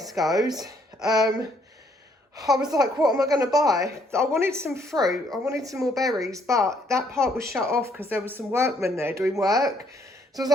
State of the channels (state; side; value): normal; both; correlation 0.68